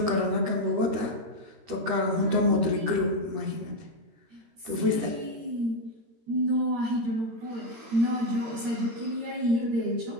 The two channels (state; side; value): late; left; 13 ms